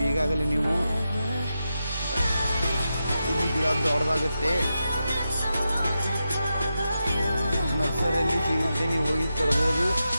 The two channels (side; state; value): both; inverted; correlation -0.88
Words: ಈಗಾಗಲೇ ನೀವು. ಇದು ಗಿಡ ದೊಡ್ಡದಾಗುತ್ತೆ, ನರ್ಸರಿಯಲ್ಲಿ ಸಿಗುತ್ತೆ, ನೀವು ಹೋಗಿ ತರಬಹುದು.